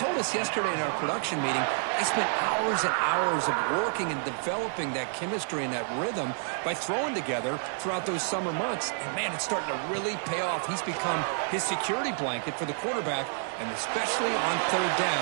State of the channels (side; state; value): left; silent; 57 dB below the other